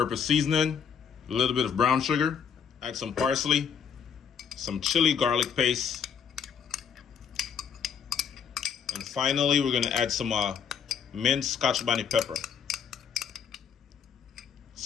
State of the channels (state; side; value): quieter; right; 7.3 dB